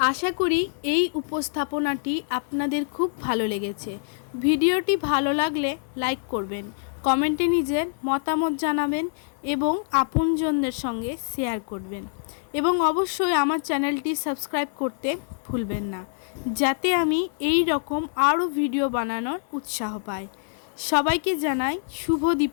আশা করি এই উপস্থাপনাটি আপনাদের খুব ভালো লেগেছে। ভিডিওটি ভালো লাগলে লাইক করবেন, কমেন্টে নিজের মতামত জানাবেন এবং আপনজনদের সঙ্গে শেয়ার করবেন এবং অবশ্যই আমার চ্যানেলটি সাবস্ক্রাইব করতে ভুলবেন না, যাতে আমি এই রকম আরও ভিডিও বানানোর উৎসাহ পাই। সবাইকে জানাই শুভ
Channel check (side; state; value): right; silent; 58 dB below the other